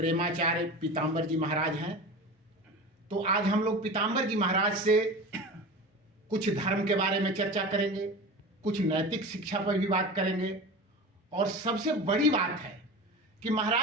पीताम्बर जी महाराज हैं। तो आज हम लोग पीताम्बर जी महाराज से कुछ धर्म के बारे में चर्चा करेंगे, कुछ नैतिक शिक्षा पर भी बात करेंगे। और सबसे बड़ी बात है कि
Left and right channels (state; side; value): normal; both; correlation 0.31